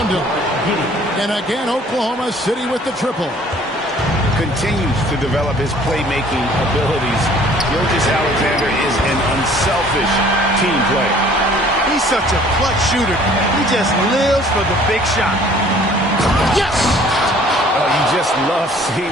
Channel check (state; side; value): normal; both; correlation 0.54